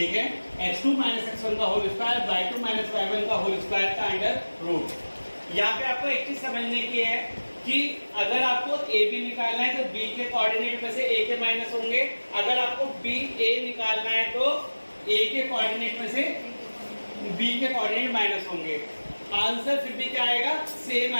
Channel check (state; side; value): inverted; both; correlation -1.00